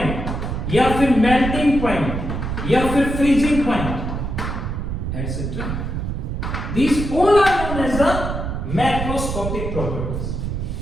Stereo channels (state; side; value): noise; right; rumble, 4 dB below the sound